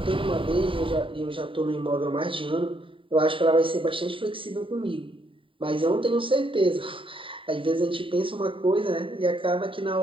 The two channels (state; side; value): late; left; 0.25 ms